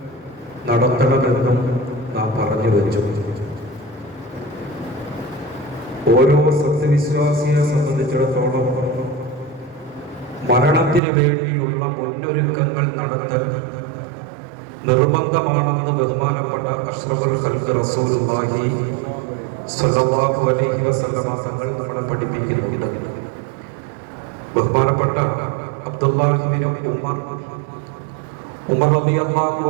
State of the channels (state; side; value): drops out; left; at 11.0 s